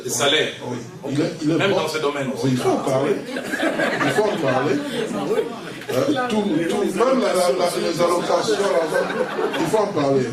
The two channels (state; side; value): identical; both; correlation 1.00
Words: Les salaires, oui. Okay. Il est même bon. dans ce domaine aussi. Oui, il faut en parler. Il faut en parler. Même les allocations, l'argent, il faut en parler.